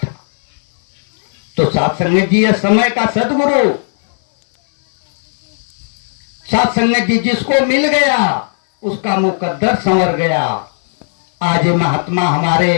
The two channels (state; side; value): silent; right; 59 dB below the other